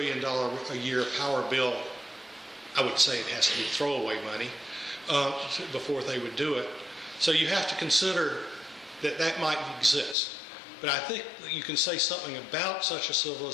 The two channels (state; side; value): drops out; right; at 10.2 s